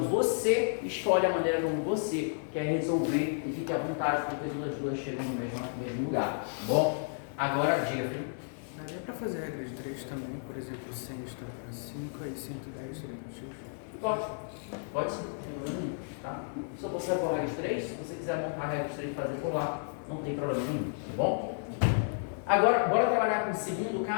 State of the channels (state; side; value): silent; right; digital silence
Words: você escolhe a maneira como você quer resolver e fique à vontade, porque todas as duas chegam no mesmo lugar, tá bom? Agora, diga, filho. Daria para fazer a regra de 3 também, por exemplo, 100 está para 5 e 110 seria para X? Pode sim, tá? Só você vai por regra de 3, se você quiser montar a regra de 3 e fazer por lá, não tem problema nenhum, tá bom? Agora, bora trabalhar com o segundo